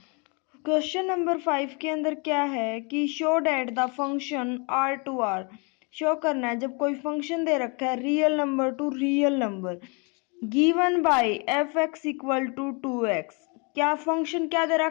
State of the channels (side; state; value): right; quieter; 33.0 dB